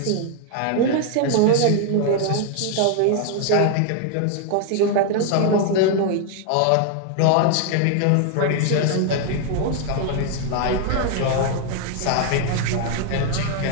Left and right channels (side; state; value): both; different; correlation 0.00